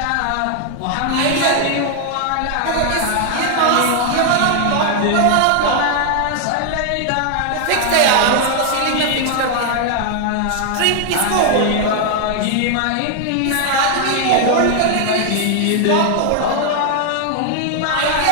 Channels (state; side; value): different; both; correlation 0.00